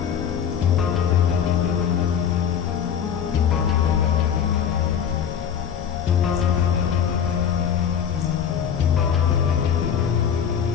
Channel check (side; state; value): right; quieter; 8.1 dB